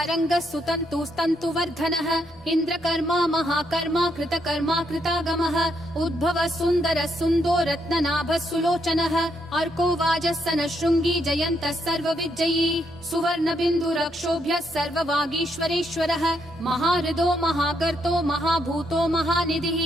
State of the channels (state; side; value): normal; both; correlation 0.76